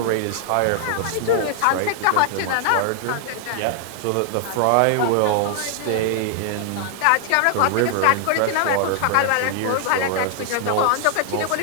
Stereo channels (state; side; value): different; both; correlation 0.00